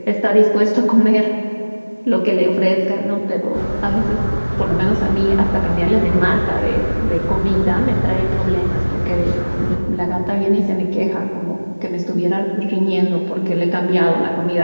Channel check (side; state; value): both; inverted; correlation -1.00